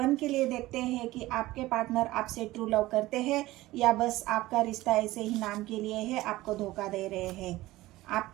के लिए देखते हैं कि आपके पार्टनर आपसे ट्रू लव करते हैं या बस आपका रिश्ता ऐसे ही नाम के लिए है, आपको धोखा दे रहे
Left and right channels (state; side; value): quieter; left; 17.7 dB